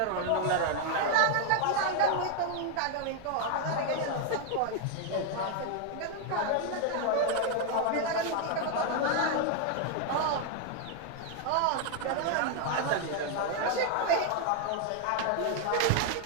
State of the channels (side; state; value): both; different; correlation 0.00